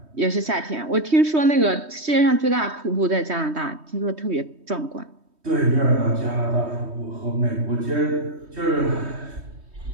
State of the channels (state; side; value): late; left; 3.2 ms